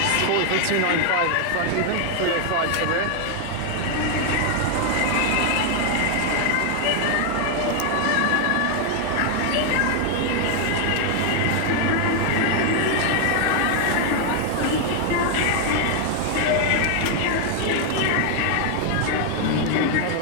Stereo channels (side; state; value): both; different; correlation 0.01